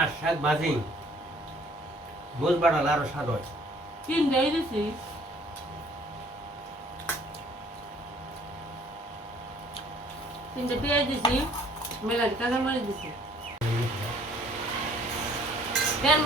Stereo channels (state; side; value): normal; both; correlation 0.58